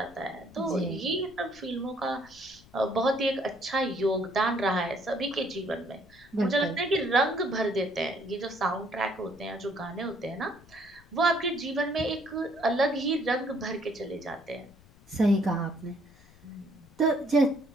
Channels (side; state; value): left; noise; rumble, 25 dB below the sound